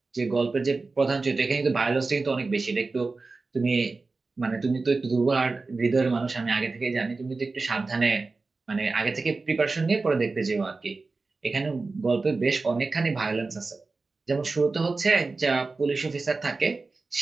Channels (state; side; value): quieter; left; 3.8 dB